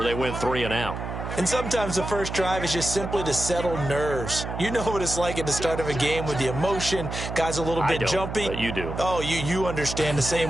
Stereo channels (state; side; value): noise; right; hum, 6 dB below the sound